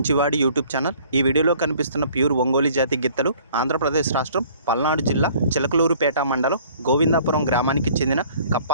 యూట్యూబ్ ఛానల్. ఈ వీడియోలో కనిపిస్తున్న ప్యూర్ ఒంగోలు జాతి గిత్తలు ఆంధ్రప్రదేశ్ రాష్ట్రం పల్నాడు జిల్లా చిలకలూరుపేట మండలం గోవిందాపురం గ్రామానికి చెందిన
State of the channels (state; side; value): inverted; both; correlation -0.54